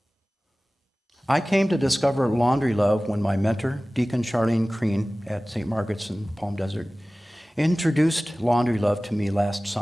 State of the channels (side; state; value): both; normal; correlation 0.98